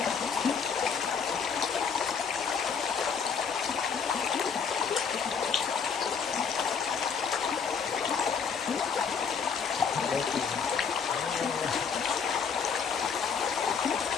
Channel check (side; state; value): right; quieter; 6.2 dB